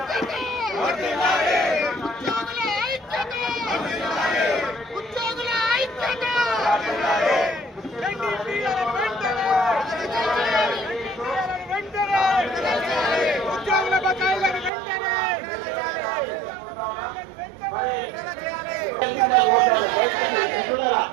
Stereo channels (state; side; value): drops out; left; at 14.7 s